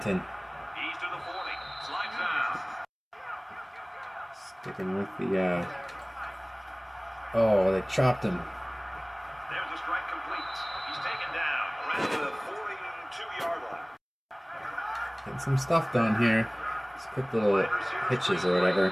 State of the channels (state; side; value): identical; both; correlation 1.00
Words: Sticking with the, oh, they chopped him. There's a strike complete. He's taken down around the 42-yard line. Getting some stuff done here. Just quick little hitches or